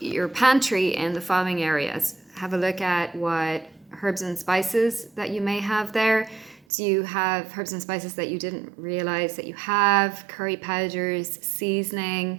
pantry in the following areas. Have a look at what herbs and spices that you may have there. Do you have herbs and spices that you didn't realize that you have? Curry powders,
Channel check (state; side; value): drops out; left; at 6.6 s